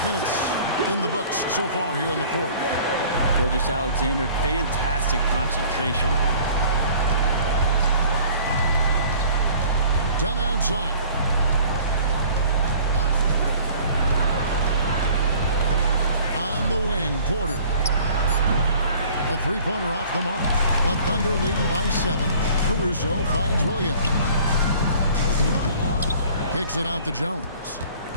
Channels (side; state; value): both; inverted; correlation -0.51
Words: minutes in the books so far here in the fourth. Gilgeous-Alexander, fantastic concentration. Dunn outside. On the wing, Porter. A three-pointer off the mark. The Thunder leading by 7. Caruso finds Williams. Kicks it out to Jones.